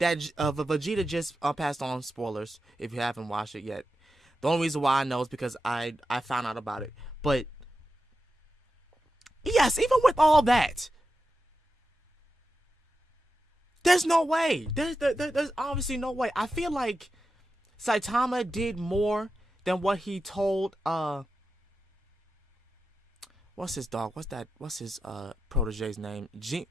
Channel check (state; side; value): normal; both; correlation 0.90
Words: Vegeta just passed on, spoilers if you haven't watched it yet. The only reason why I know is because I found out about it. But yes, even with all that, there's no way. There's obviously no way. I feel like Saitama did more than what he told what's his dog? What's his protege's name?